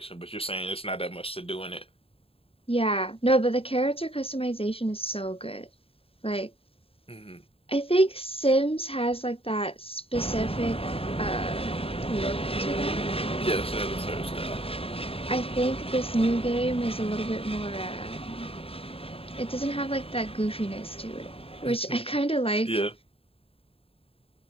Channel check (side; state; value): right; late; 0.27 ms